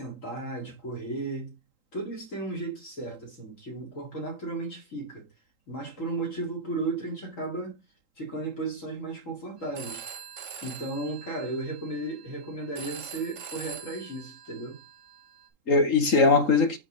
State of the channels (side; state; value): right; late; 3.8 ms